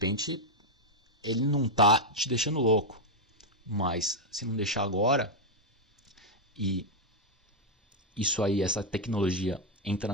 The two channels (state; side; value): normal; both; correlation -0.01